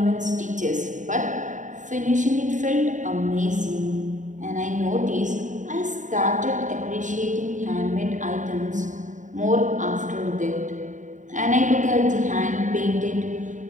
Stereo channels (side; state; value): left; late; 0.36 ms